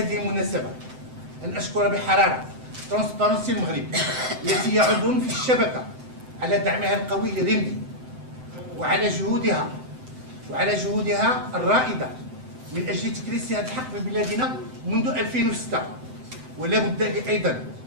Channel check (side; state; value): left; late; 7.8 ms